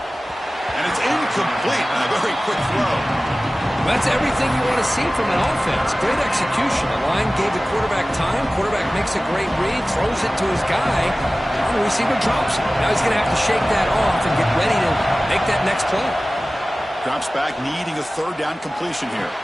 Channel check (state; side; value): normal; both; correlation 0.97